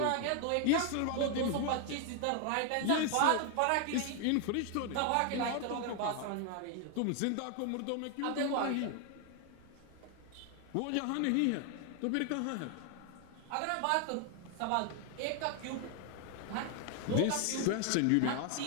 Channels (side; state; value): both; different; correlation 0.00